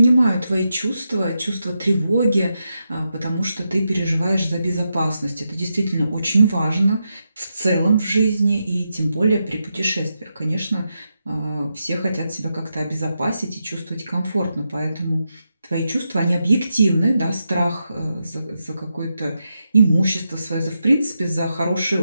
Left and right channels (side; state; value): both; inverted; correlation -0.86